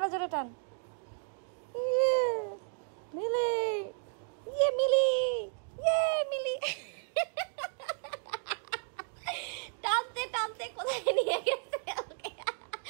জোরে টান। ইয়ে মিলি, ইয়ে মিলি, ইয়ে মিলি। টানতে টানতে কোথায় নিয়ে গেছে ওকে।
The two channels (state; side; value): silent; left; digital silence